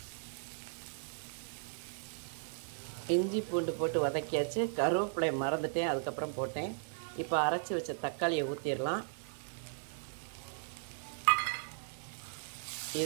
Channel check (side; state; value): left; silent; 53 dB below the other